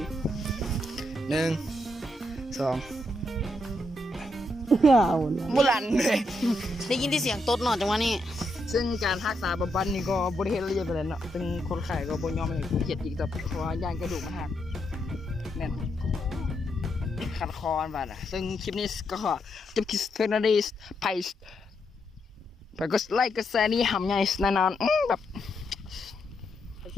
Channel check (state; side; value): normal; both; correlation 0.80